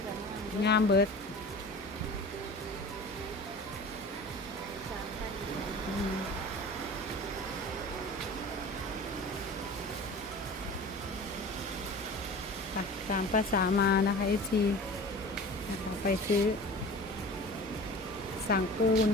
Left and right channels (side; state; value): both; normal; correlation 0.38